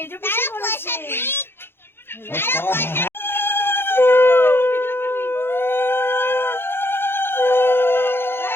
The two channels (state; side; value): late; right; 0.11 ms